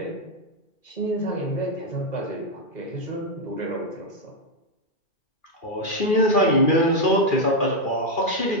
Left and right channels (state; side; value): late; right; 2.4 ms